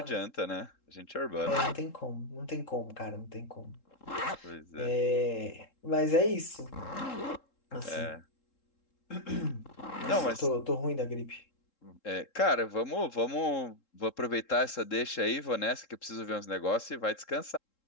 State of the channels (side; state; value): right; late; 3.7 ms